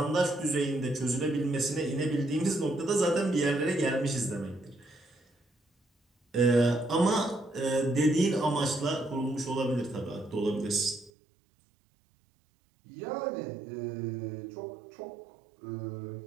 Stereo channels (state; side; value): drops out; left; at 11.1 s